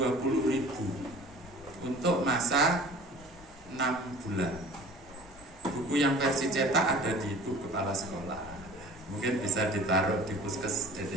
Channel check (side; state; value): both; normal; correlation 0.45